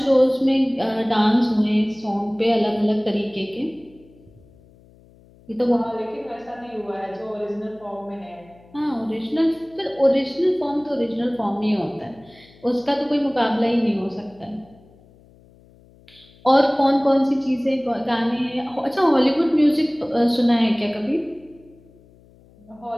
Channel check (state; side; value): noise; left; hum, 27 dB below the sound